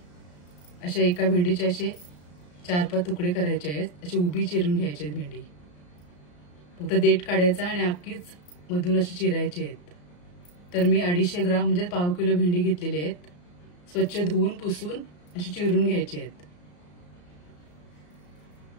अशा एका भेंडीचे असे 4-5 तुकडे करायचे आहेत। अशी उभी चिरून घ्यायची आहे भेंडी। फक्त देठ काढायचा आणि अख्खीच मधून अशी चिरायची आहेत। तर मी 250 ग्राम म्हणजे पाव किलो भेंडी घेतलेली आहेत। स्वच्छ धुवून पुसून अशी चिरून घ्यायची आहेत।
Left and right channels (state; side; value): late; right; 34 ms